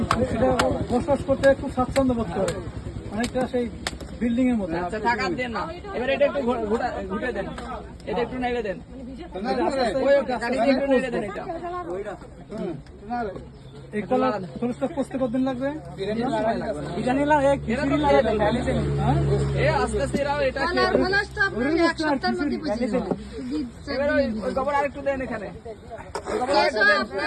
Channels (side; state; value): both; identical; correlation 1.00